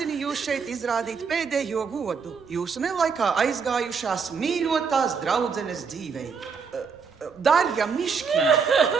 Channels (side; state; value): left; quieter; 5.7 dB